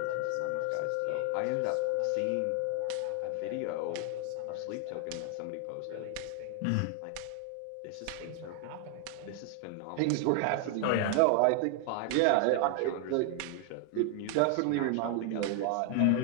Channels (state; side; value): different; both; correlation 0.00